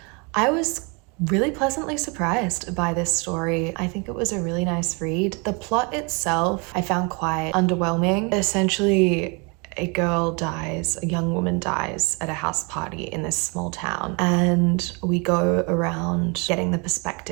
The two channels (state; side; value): quieter; left; 31.4 dB